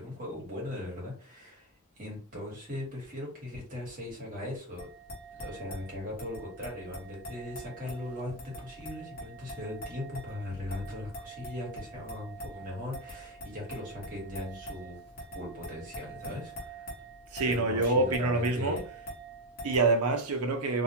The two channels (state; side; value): normal; both; correlation 0.05